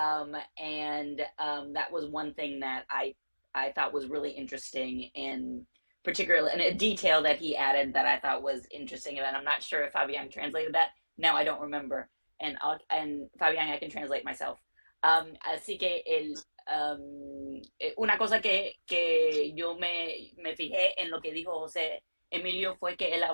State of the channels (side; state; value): both; inverted; correlation -1.00